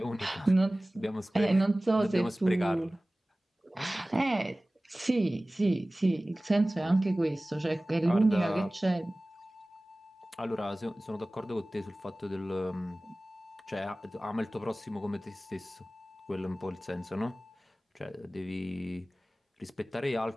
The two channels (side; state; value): both; normal; correlation 0.98